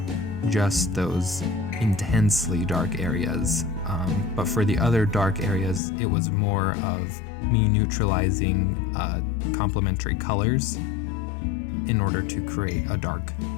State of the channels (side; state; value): right; drops out; at 5.8 s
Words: just those intensely dark areas. But for the other dark areas, it was more of me neutralizing complementary colors in order to create a dark